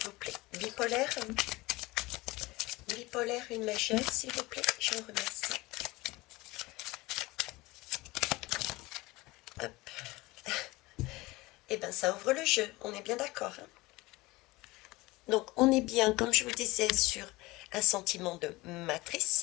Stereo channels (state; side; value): quieter; right; 21.1 dB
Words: plaît. Bipolaire. Bipolaire, une majeure, s'il vous plaît. Je vous remercie. Hop. Eh bien, ça ouvre le jeu. On est bien d'accord, hein? Donc, on est bien, comme je vous disais, sur un sentiment de